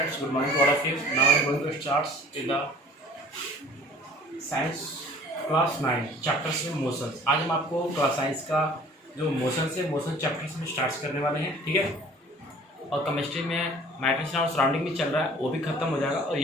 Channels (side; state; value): both; normal; correlation 0.49